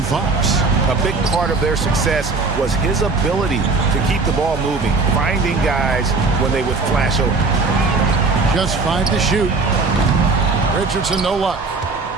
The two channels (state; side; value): quieter; left; 4.0 dB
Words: Fox. A big part of their success was his ability to keep the ball moving, finding guys when they would flash open. Just 5 to shoot. Richardson, no luck.